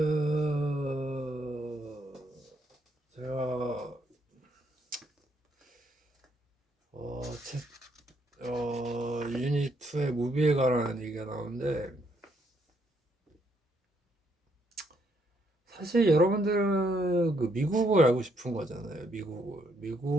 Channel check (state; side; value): normal; both; correlation 0.73